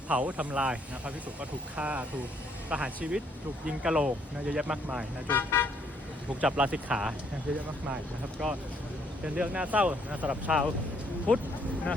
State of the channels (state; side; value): normal; both; correlation 0.68